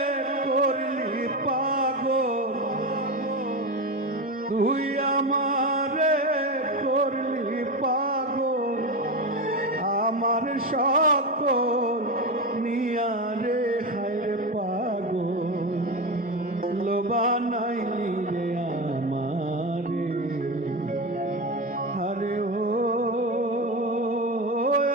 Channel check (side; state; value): both; normal; correlation 0.18